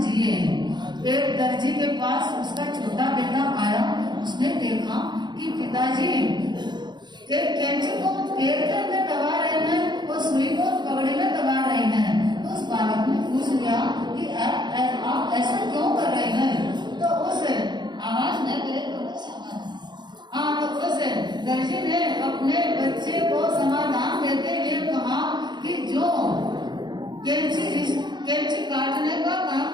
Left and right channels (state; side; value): late; left; 0.21 ms